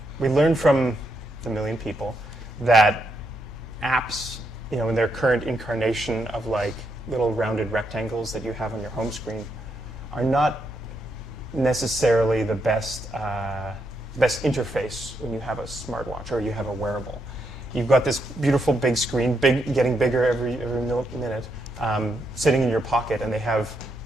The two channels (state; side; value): normal; both; correlation 0.79